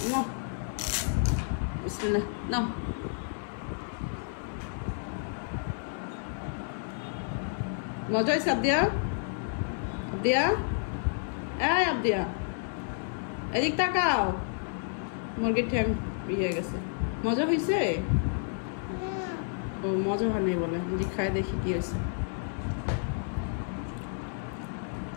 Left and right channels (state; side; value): silent; right; 57 dB below the other